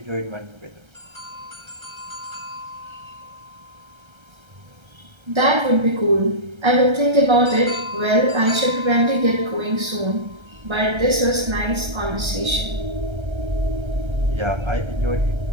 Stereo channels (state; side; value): late; left; 1.3 ms